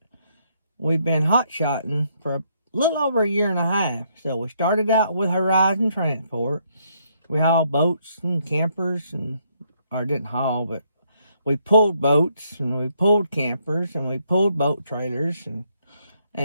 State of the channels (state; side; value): inverted; both; correlation -0.72